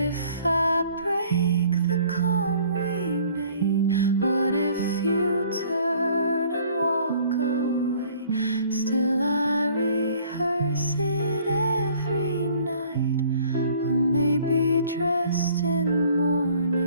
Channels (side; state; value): both; inverted; correlation -0.55